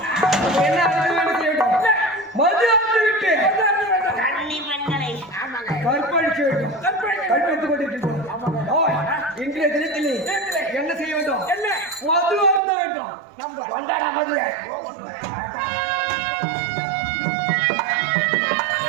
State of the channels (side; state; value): left; drops out; at 12.6 s